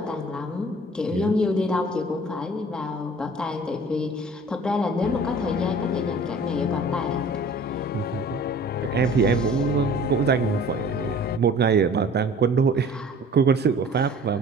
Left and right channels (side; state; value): both; normal; correlation 0.48